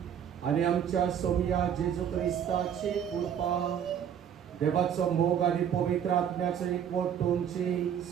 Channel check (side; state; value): left; quieter; 8.8 dB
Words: आणि आमच्या सोमिया जेजू ख्रिस्ताची कृपा, देवाचं मोग आणि पवित्र आत्म्याचं एकवट तुमची